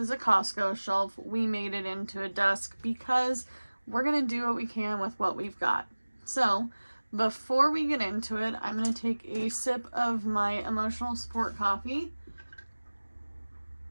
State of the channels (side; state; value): both; inverted; correlation -1.00